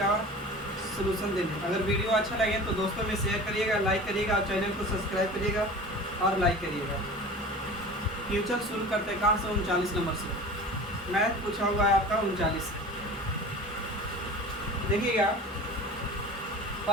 सलूशन देने। अगर वीडियो अच्छा लगे तो दोस्तों में शेयर करिएगा, लाइक करिएगा और चैनल को सब्सक्राइब करिएगा और लाइक करिएगा। क्वेश्चन शुरू करते हैं कहाँ से? 39 नंबर से मैथ पूछा हुआ है आपका 39। देखिएगा,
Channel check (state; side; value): normal; both; correlation 0.38